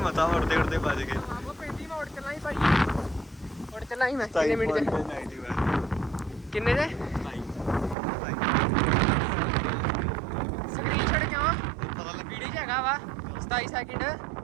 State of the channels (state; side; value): drops out; left; at 8.0 s